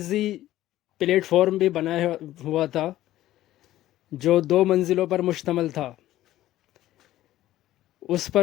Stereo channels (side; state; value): right; quieter; 14.4 dB